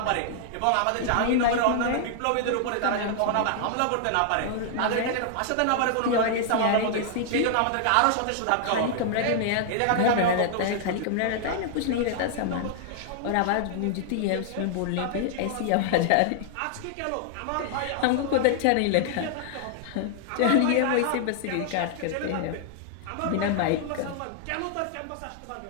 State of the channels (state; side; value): different; both; correlation -0.01